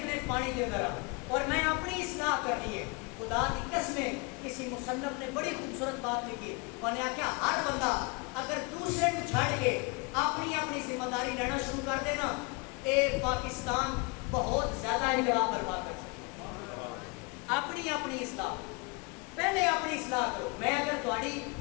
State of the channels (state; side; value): quieter; right; 30.0 dB